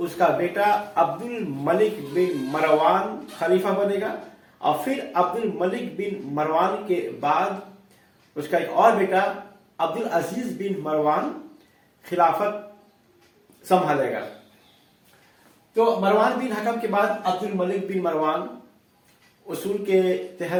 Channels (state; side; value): identical; both; correlation 1.00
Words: کا بیٹا عبد الملک بن مروان خلیفہ بنے گا، اور پھر عبد الملک بن مروان کے بعد اس کا ایک اور بیٹا عبد العزیز بن مروان خلافت سنبھالے گا۔ تو مروان بن حکم کے بعد عبد الملک بن مروان اصول کے